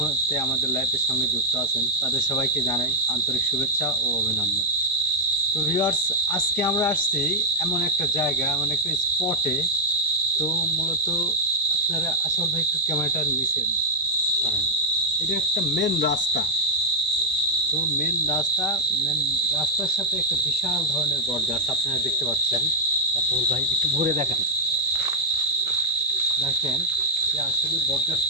আমাদের লাইভের সঙ্গে যুক্ত আছেন তাদের সবাইকে জানাই আন্তরিক শুভেচ্ছা ও অভিনন্দন। তো ভিউয়ার্স, আজকে আমরা আসছি এমন একটা জায়গা, এমন একটা স্পটে। তো মূলত আপনারা আসল ভাই একটু ক্যামেরাটা নিচে ধরেন। এটা একটা মেন রাস্তা। তো মেন রাস্তার সাথে একটা বিশাল ধরনের বট গাছ আপনারা দেখতে পাচ্ছেন। আসল ভাই একটু ঘুরে দেখেন যে আসলে বট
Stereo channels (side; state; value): both; normal; correlation -0.06